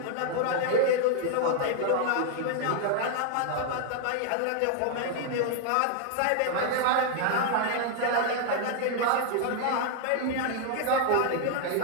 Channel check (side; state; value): both; different; correlation 0.00